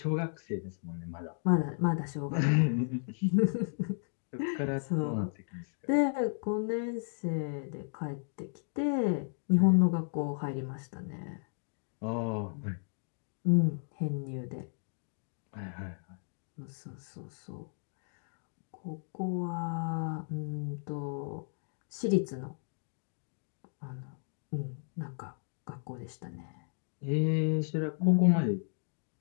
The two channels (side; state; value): right; silent; digital silence